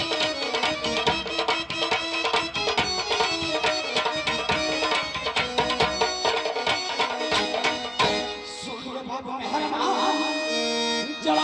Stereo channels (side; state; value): both; identical; correlation 1.00